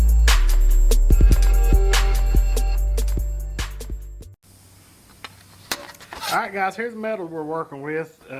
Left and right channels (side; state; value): both; identical; correlation 1.00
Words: Alright guys, here's the metal we're working with.